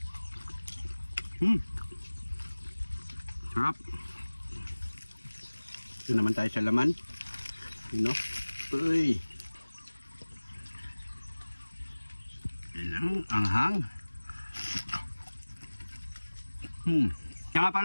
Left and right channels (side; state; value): both; inverted; correlation -1.00